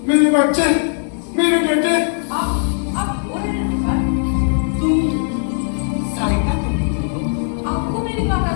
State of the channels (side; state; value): right; silent; digital silence